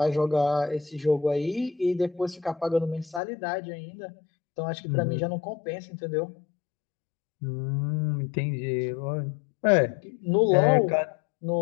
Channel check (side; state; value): right; drops out; at 3.2 s